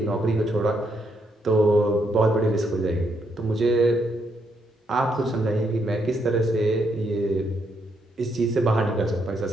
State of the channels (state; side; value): normal; both; correlation 0.76